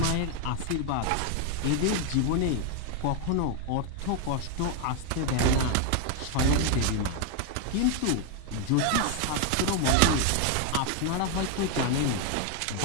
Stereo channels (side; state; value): both; different; correlation 0.00